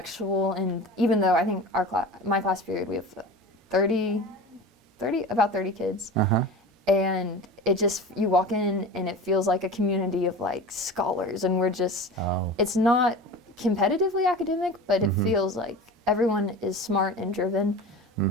And even though I think my class period, we have about 30 kids. And it just, you walk in and it feels like a community of scholars, and we're just, it's not competitively academic, but it feels like everyone is smart and driven,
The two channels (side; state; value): both; normal; correlation 0.33